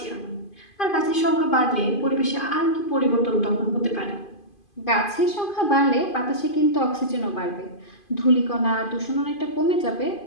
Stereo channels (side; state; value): right; late; 2.5 ms